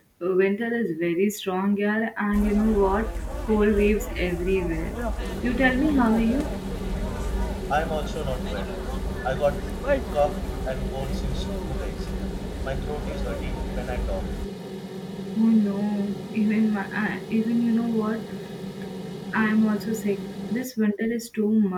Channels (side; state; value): both; identical; correlation 1.00